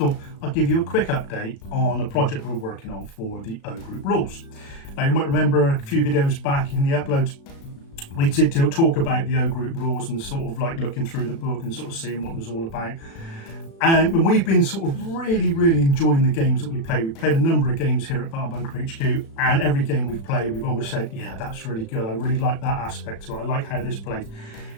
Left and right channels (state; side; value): late; right; 36 ms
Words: I'd give you a quick update on a project we're working on for the O Group rules. Now you might remember a few videos back in the uploads we did talk about the O Group rules and sort of like looking through the book and sort of seeing what it was all about. And we've been sort of really enjoying the games that we play. We've played a number of games here at Battle Bunker HQ, and every game we've played we've always said, yeah, that's really good, I really like that aspect to it, I like how this plays.